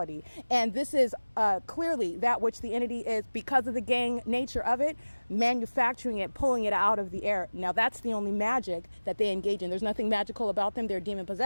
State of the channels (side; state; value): both; inverted; correlation -1.00